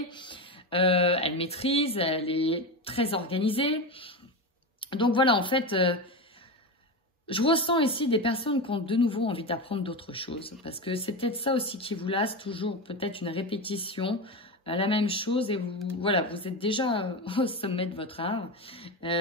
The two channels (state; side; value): normal; both; correlation 0.19